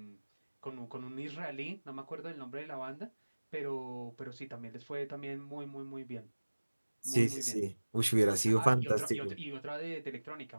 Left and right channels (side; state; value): both; inverted; correlation -1.00